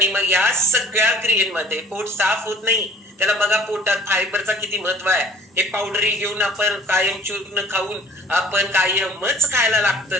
मग या सगळ्या क्रियेमध्ये पोट साफ होत नाही. त्याला बघा पोटात फायबरचा किती महत्व आहे. हे पावडरी घेऊन आपण कायम चूर्ण खाऊन आपण कायमच खायला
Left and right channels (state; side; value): normal; both; correlation 0.50